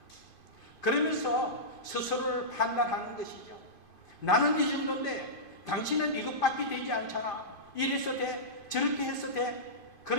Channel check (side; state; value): right; late; 2.5 ms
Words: 그러면서 스스로를 판단하는 것이죠. 나는 이 정도인데 당신은 이것밖에 되지 않잖아, 이래서 돼, 저렇게 해서 돼,